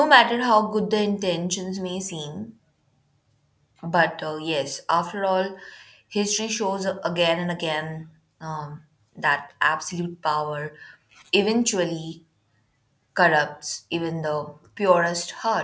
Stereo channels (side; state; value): both; identical; correlation 1.00